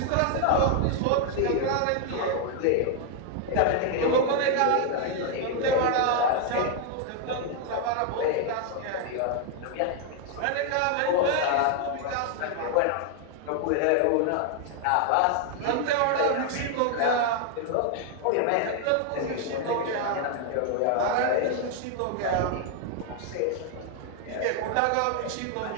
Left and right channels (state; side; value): different; both; correlation 0.00